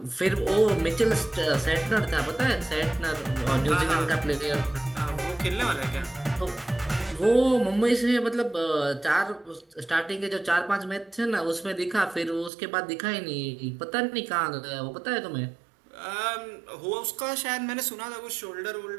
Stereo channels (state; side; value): drops out; left; at 12.5 s